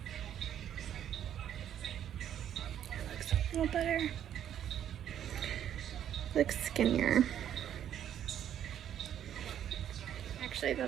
It looks a little better. Looks skinnier. I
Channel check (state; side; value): quieter; left; 10.1 dB